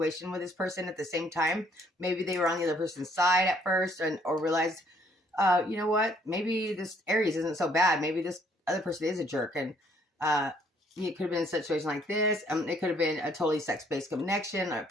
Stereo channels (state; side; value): normal; both; correlation 0.65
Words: with this person at the same time. Maybe they were on the other person's side at first, or realized, you know what? Maybe this Aries isn't so bad. Maybe this other person is a jerk, and it could have been a situation like this. It could have been a totally sex-based connection